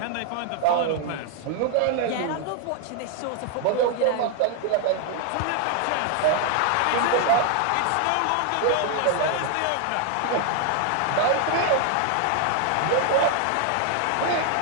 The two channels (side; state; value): both; different; correlation 0.00